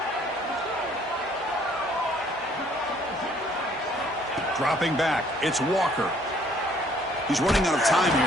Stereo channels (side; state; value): both; normal; correlation 0.61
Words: Dropping back, it's Walker. He's running out of time